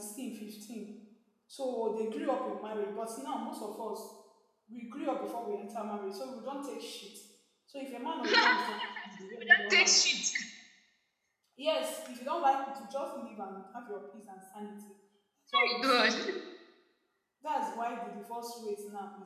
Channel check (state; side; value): identical; both; correlation 1.00